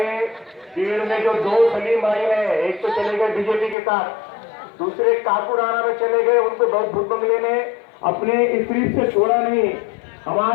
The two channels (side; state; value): right; drops out; at 3.8 s